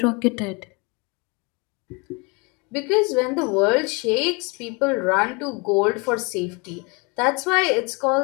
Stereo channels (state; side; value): quieter; right; 29.1 dB